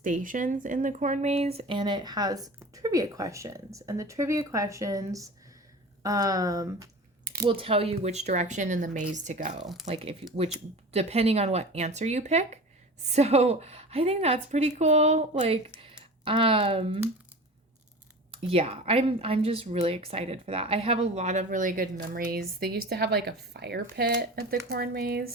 in the corn maze, and it has trivia questions, and the trivia questions will tell you which direction in the maze to go, like which depending on what answer you pick. So I think that's pretty cool. Like, yeah, I'm just really excited for that. I have a lot of really good memories. They used to have like a fire pit at the corn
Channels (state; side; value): normal; both; correlation 0.35